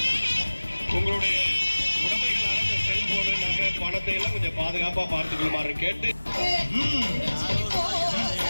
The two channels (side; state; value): both; inverted; correlation -1.00